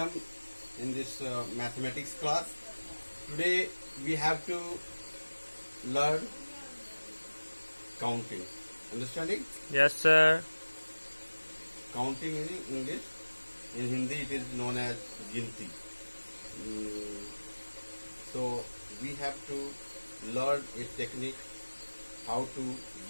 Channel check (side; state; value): both; inverted; correlation -1.00